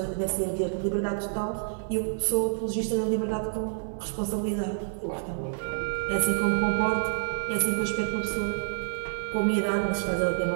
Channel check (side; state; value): left; silent; 59 dB below the other